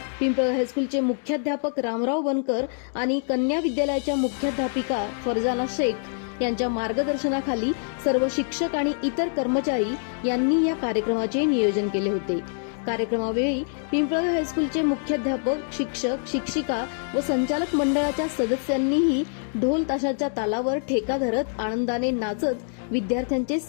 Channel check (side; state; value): right; silent; digital silence